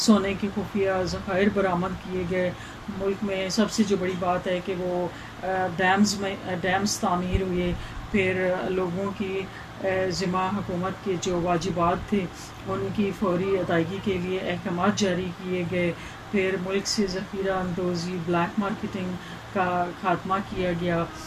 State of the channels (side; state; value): both; identical; correlation 1.00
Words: سونے کے خفیہ ذخائر برآمد کیے گئے۔ ملک میں سب سے جو بڑی بات ہے کہ وہ ڈیمز تعمیر ہوئے، پھر لوگوں کی ذمہ حکومت کے جو واجبات تھے ان کی فوری ادائیگی کے لیے احکامات جاری کیے گئے، پھر ملک سے ذخیرہ اندوزی، بلیک مارکیٹنگ کا خاتمہ کیا گیا،